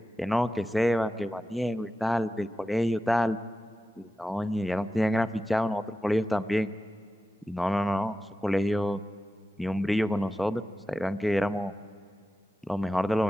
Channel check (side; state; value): both; normal; correlation 0.93